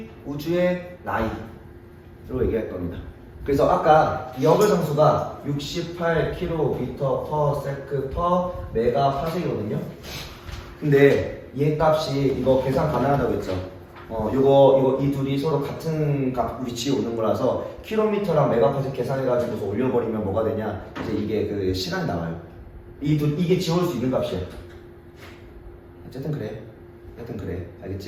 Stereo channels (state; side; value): identical; both; correlation 1.00